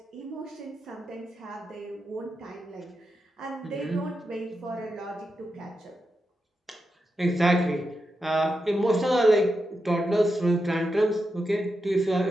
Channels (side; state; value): both; normal; correlation 0.87